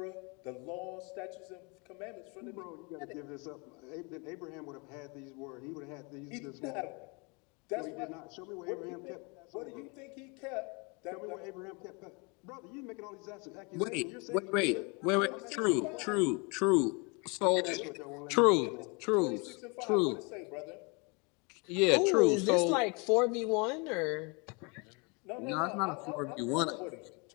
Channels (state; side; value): quieter; right; 31.1 dB